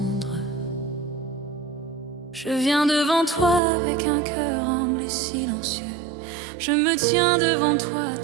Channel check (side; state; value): left; drops out; at 3.6 s